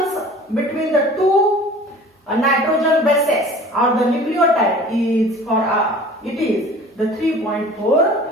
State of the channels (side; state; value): both; normal; correlation 0.44